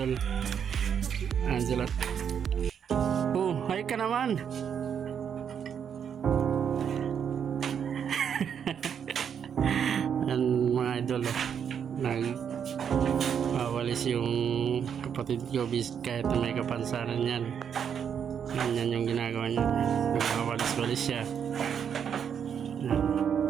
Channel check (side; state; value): left; quieter; 7.9 dB